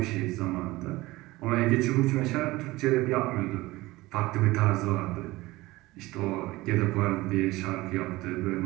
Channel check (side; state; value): left; quieter; 19.6 dB